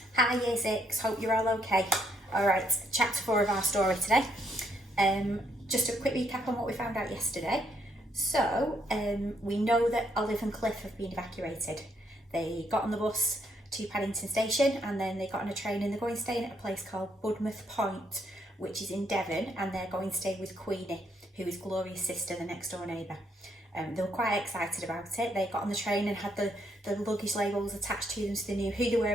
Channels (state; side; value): normal; both; correlation 0.73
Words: Hi Year 6, hope you're all okay. Alright, chapter 4 of our story today. Just a quick recap on what we found out yesterday. So, we know that Olive and Cliff have been evacuated. They got on the bus to Paddington Station and then they got on a train and they're going staying at a place called Budmouth Point, which is in Devon, and they're going to stay with Queenie, who is Gloria's sister, the next door neighbour. They were quite excited about it. They got on the train and had the luggage labels attached to them so they knew who they were